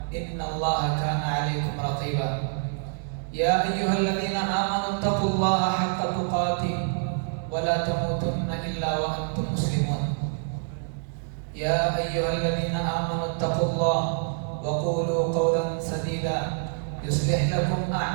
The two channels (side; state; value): left; silent; digital silence